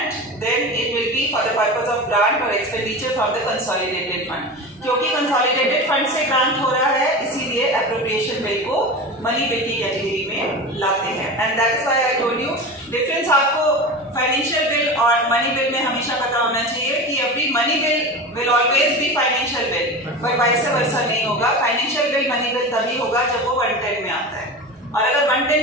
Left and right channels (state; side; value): normal; both; correlation 0.28